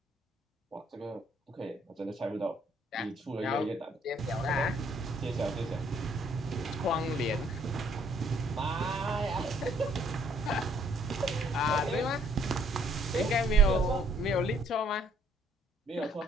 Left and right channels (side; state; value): both; normal; correlation 0.65